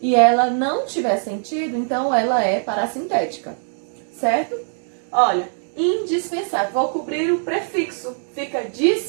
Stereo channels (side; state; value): left; silent; 65 dB below the other